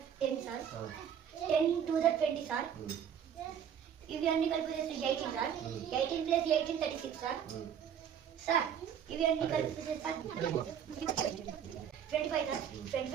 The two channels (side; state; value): left; quieter; 8.6 dB